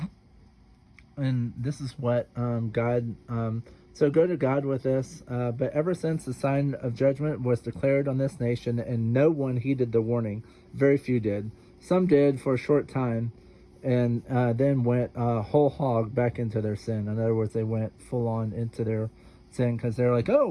And this is what God... so go to God with this. But ever since the sign of judgment was declared on this nation, and no one heeded the warning, very few did. Some did for a short time, and then went whole hog back into their sin. In other words, they went full on into their sin because they're like, oh,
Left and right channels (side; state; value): both; identical; correlation 1.00